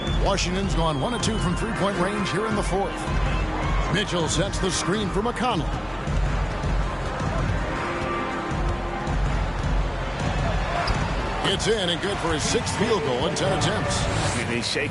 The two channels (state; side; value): identical; both; correlation 1.00